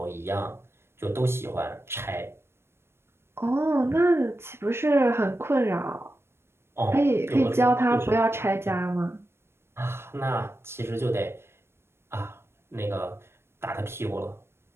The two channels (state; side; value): late; left; 0.12 ms